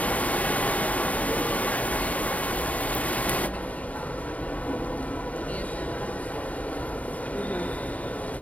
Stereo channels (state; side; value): late; right; 0.069 ms